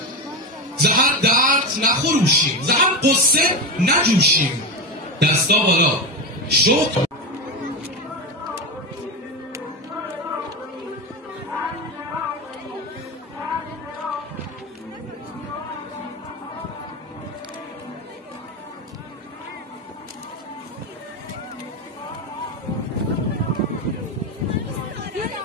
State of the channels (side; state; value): both; normal; correlation 0.17